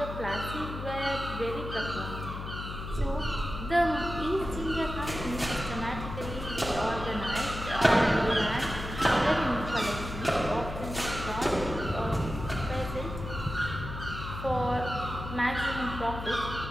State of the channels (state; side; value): noise; left; hum, 8 dB below the sound